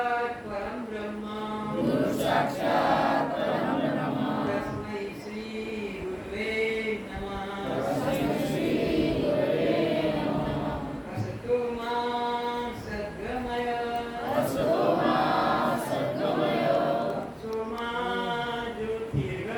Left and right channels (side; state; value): both; identical; correlation 1.00